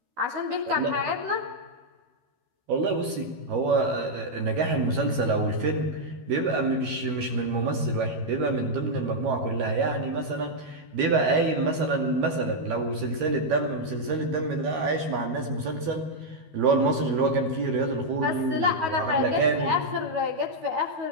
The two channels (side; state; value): left; late; 12 ms